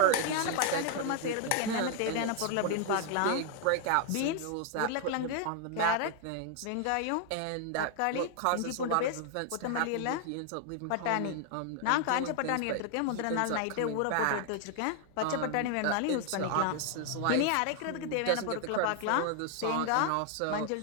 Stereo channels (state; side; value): different; both; correlation 0.00